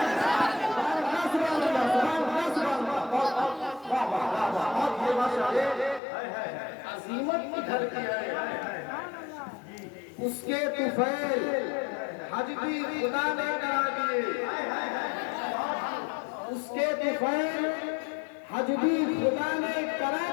अजीमत की घर की है। उसके तुफैल हज भी खुदा ने करा दिए, उसके तुफैल हज भी खुदा ने करा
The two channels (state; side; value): drops out; right; at 6.0 s